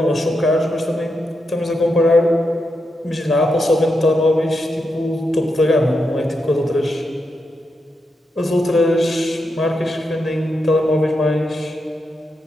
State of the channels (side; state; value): both; normal; correlation 0.85